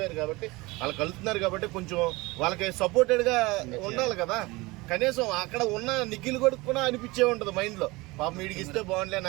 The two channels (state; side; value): quieter; left; 22.7 dB